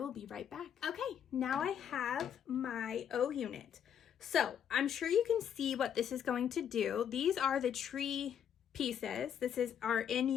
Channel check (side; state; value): right; quieter; 8.8 dB